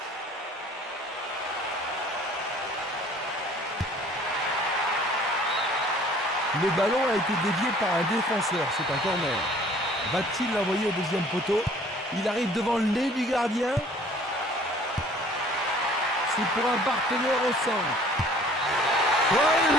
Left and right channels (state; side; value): normal; both; correlation 0.53